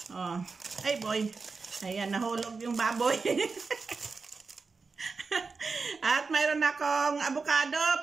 Oh. Ay boy. Ayan, nahulog yung baboy. At mayroon akong avocado.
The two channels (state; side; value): quieter; left; 4.5 dB